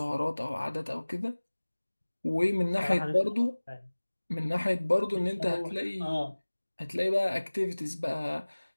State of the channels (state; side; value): inverted; both; correlation -1.00